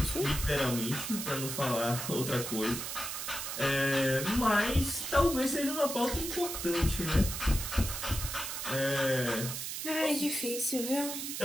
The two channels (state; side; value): noise; right; hiss, 5 dB below the sound